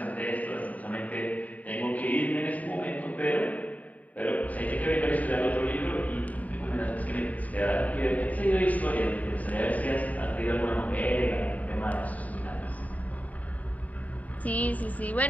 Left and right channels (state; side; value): late; right; 0.071 ms